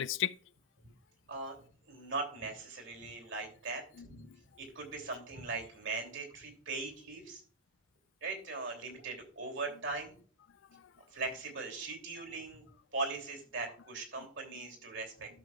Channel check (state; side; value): normal; both; correlation -0.16